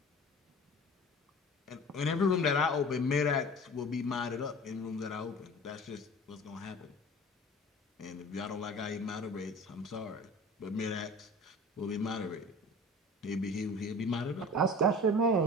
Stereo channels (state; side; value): normal; both; correlation 0.40